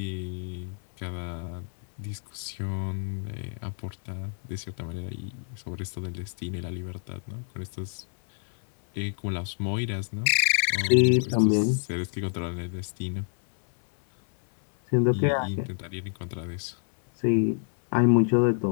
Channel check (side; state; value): right; silent; 60 dB below the other